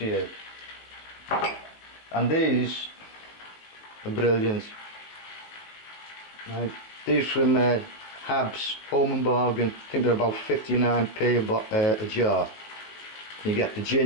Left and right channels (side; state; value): right; late; 18 ms